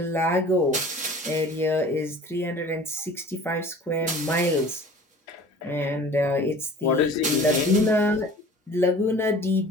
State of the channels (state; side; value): normal; both; correlation 0.45